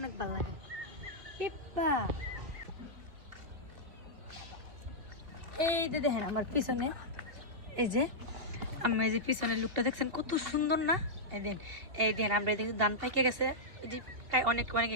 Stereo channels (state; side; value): late; left; 2.5 ms